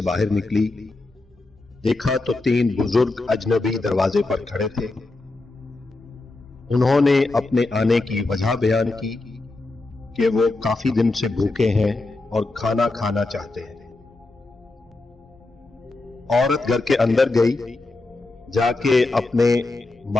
बाहर निकली। देखा तो 3 बुजुर्ग अजनबी दरवाजे पर खड़े थे। उन्होंने अपने आने की वजह बयान की कि वो काफी दिन से भूखे हैं और खाना खाना चाहते हैं। औरत घर के अंदर गई, जाके अपने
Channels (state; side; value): quieter; right; 3.1 dB